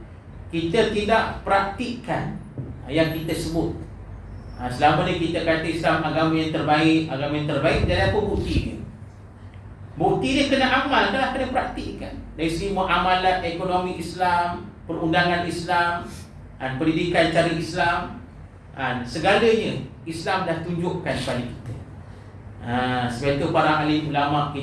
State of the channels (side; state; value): both; identical; correlation 1.00